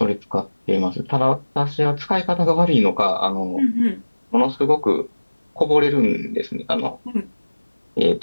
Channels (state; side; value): inverted; both; correlation -1.00